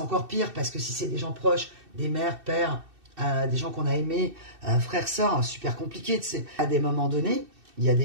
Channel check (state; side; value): late; left; 2.6 ms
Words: pire, parce que si c'est des gens proches, des mères, pères, des gens qu'on a aimés, frères, sœurs, super compliqué, tu sais. À des moments donnés, il y a